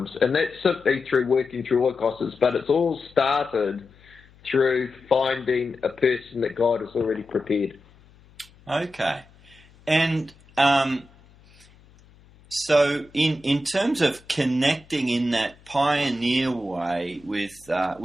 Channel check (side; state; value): left; noise; hum, 27 dB below the sound